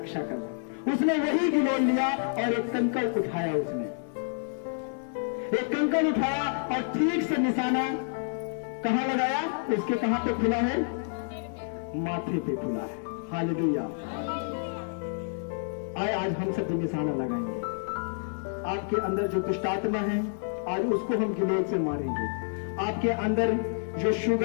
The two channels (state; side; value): silent; right; digital silence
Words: करता। उसने वही गिलोल लिया और एक कंकड़ उठाया, उसने एक कंकड़ उठाया और ठीक से निशाना कहां लगाया? उसके कहां पे खुला है? माथे पे खुला है। हालेलुया। आए आज हम सब निशाना लगाएंगे। आपके अंदर जो दुष्टात्मा है, आज उसको हम गिलोल से मारेंगे। आपके अंदर जो